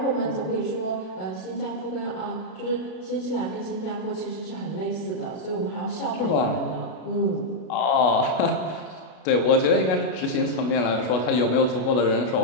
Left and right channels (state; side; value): late; right; 32 ms